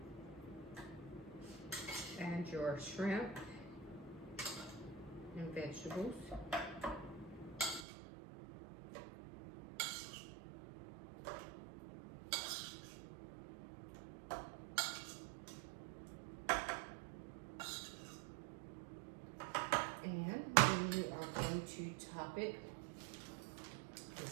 Add your shrimp and vegetables. And then you are going to top it with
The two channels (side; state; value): left; drops out; at 7.9 s